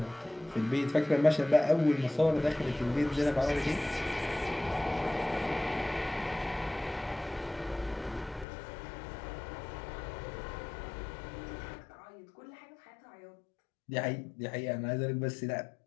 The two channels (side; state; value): right; drops out; at 8.5 s